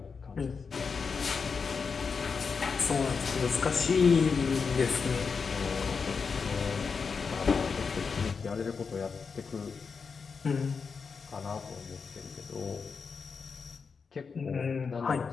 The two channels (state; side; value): quieter; right; 5.4 dB